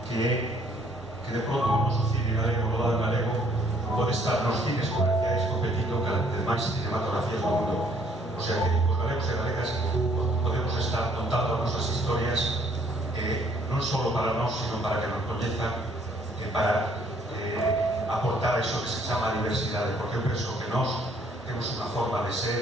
que de pronto o noso cine galego, o rodado galego, pode estar nos cines comerciais competindo con as demais cinematografías do mundo. O sea que os galegos e galegas podemos estar contando as nosas historias non só para nós, sino para que nos coñezan, para aportar eso que se chama diversidade, porque eu penso que nós temos unha forma de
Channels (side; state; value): both; normal; correlation 0.64